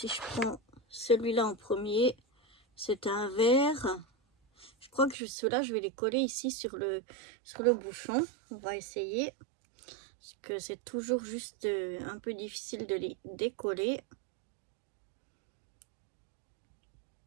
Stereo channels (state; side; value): drops out; left; at 5.2 s